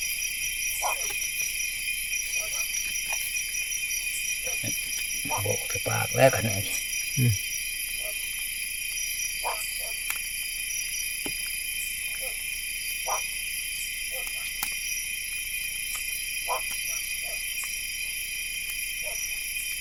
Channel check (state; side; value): identical; both; correlation 1.00